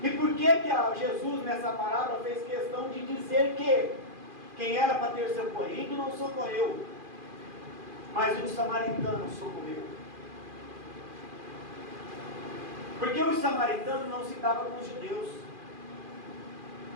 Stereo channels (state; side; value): late; left; 2.4 ms